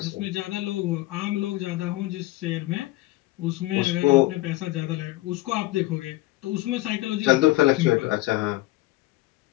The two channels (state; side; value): quieter; right; 18.5 dB